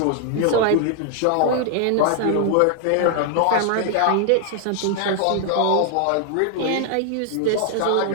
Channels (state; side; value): different; both; correlation 0.00